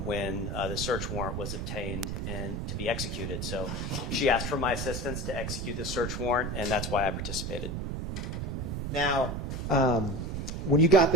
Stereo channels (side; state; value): right; noise; rumble, 3 dB below the sound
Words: when the search warrant was obtained and to be executed. So she asked for my assistance to execute the search warrant, and that's why I participated. Now, when you got